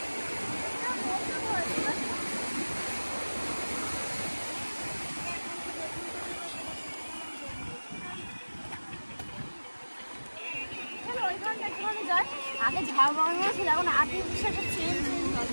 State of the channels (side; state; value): both; inverted; correlation -1.00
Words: আগে ঝাল বানানো ছিল, এখন আর্টিফিশিয়াল চেঞ্জ